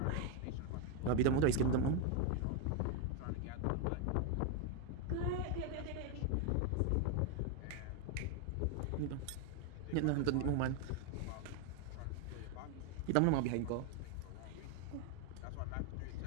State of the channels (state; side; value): different; both; correlation 0.01